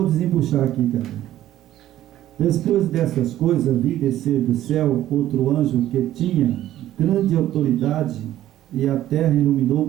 desembuchar aqui também. Depois dessas coisas, vi descer do céu outro anjo que tinha grande autoridade, e a terra iluminou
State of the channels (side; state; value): left; quieter; 13.2 dB